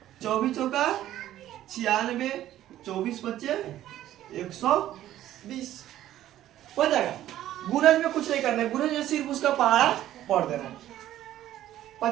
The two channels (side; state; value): left; quieter; 13.0 dB